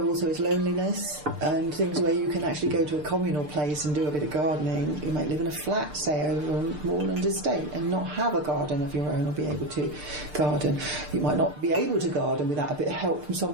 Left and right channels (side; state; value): left; late; 6.7 ms